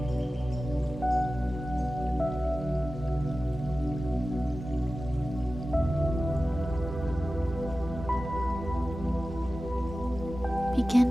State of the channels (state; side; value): normal; both; correlation 0.95